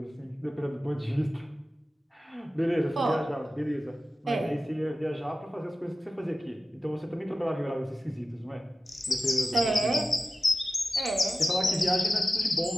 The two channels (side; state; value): both; normal; correlation 0.95